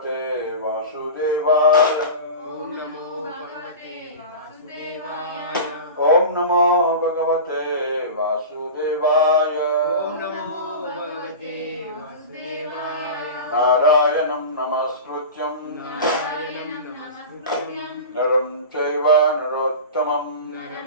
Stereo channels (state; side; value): inverted; both; correlation -0.30